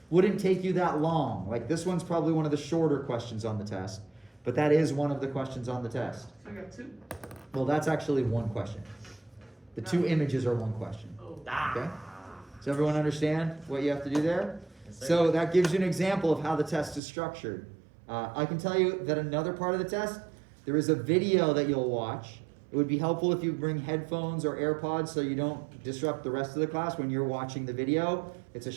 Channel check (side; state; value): left; drops out; at 17.0 s